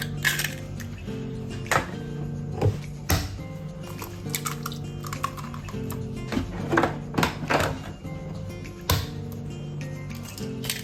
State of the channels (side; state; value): both; identical; correlation 1.00